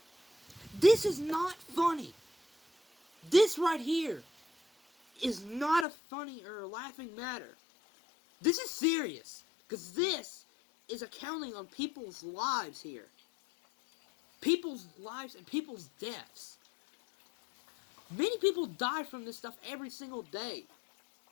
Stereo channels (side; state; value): right; drops out; at 5.9 s